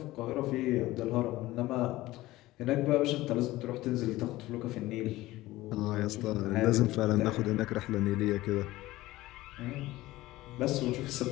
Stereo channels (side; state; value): right; quieter; 17.6 dB